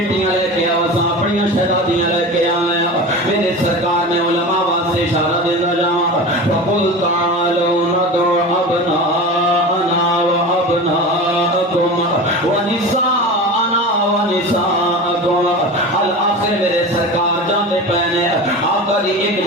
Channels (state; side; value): normal; both; correlation 0.30